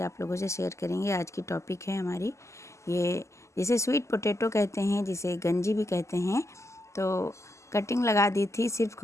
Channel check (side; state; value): right; late; 0.14 ms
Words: आप लोगों से शेयर करेंगे। आज की टॉपिक है हमारी ये, जिसे स्वीट पोटैटो कहते हैं, जिसे गंजी भी कहते हैं। तो कटिंग लगा दी थी सिर्फ